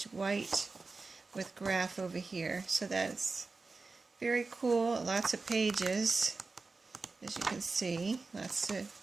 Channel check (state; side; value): quieter; left; 4.0 dB